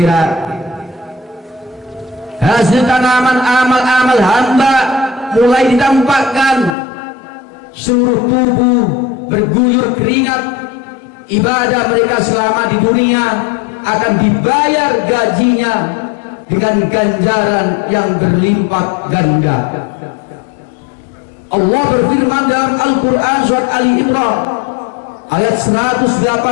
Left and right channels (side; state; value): right; drops out; at 6.7 s